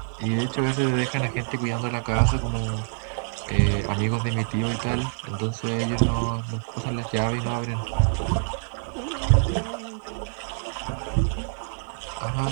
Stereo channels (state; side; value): silent; left; 61 dB below the other